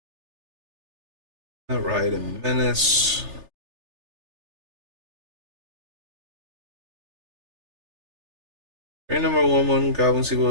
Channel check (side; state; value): left; late; 3.3 ms